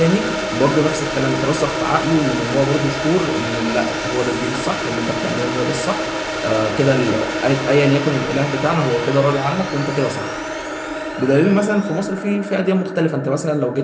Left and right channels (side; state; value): both; identical; correlation 1.00